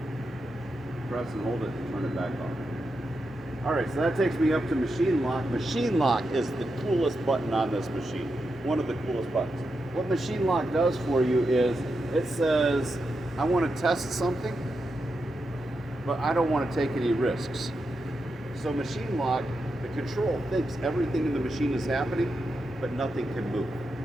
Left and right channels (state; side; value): normal; both; correlation 0.87